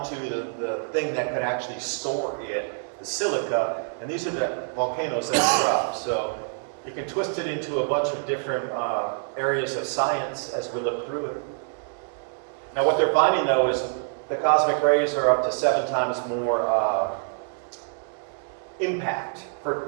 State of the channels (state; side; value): silent; left; 61 dB below the other